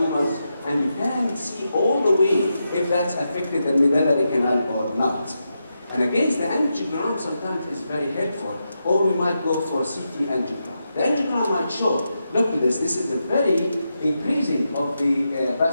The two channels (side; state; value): both; inverted; correlation -0.86